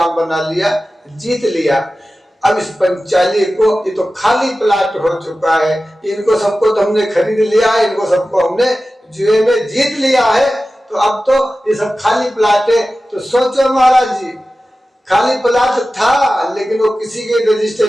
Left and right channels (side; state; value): both; normal; correlation 0.95